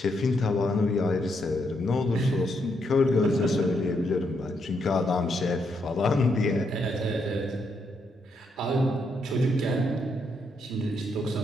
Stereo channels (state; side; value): normal; both; correlation 0.78